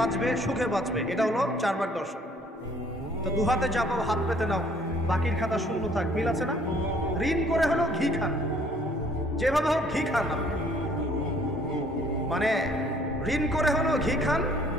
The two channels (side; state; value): both; normal; correlation 0.60